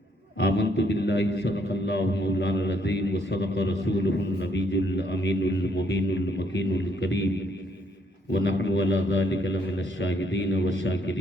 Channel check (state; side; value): normal; both; correlation 0.70